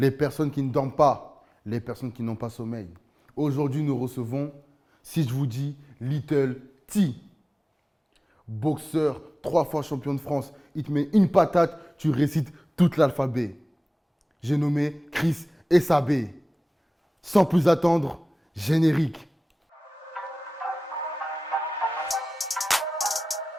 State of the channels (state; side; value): normal; both; correlation 0.97